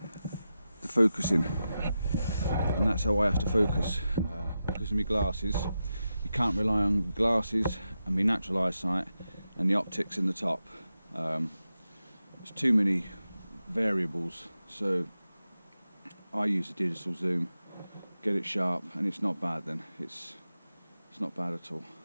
the focusing, and that's how I have to focus. Because of my glasses, you can't rely on glasses and my natural eyesight and the optics in the top. There's too many variables, so I use a digital zoom, get it sharp, and it's not bad then. It's not bad at all.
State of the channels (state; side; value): inverted; both; correlation -0.90